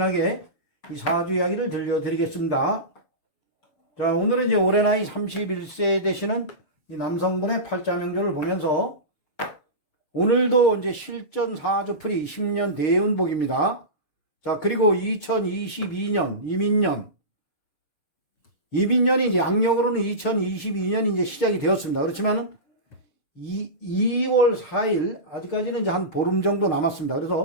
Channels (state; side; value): late; right; 6.5 ms